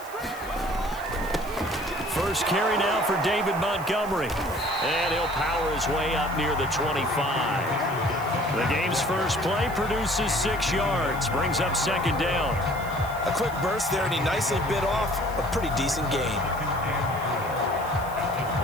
First carry now for David Montgomery. And he'll power his way up near the 25. The game's first play produces 6 yards. Brings up 2nd down. A quick burst there, and he nicely bit off a pretty decent gain.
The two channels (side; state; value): left; noise; hiss, 19 dB below the sound